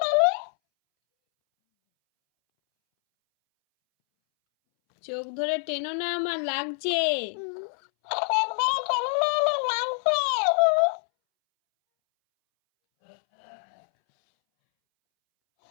চোখ ধরে টেনো না, আমার লাগছে।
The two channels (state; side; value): silent; right; 61 dB below the other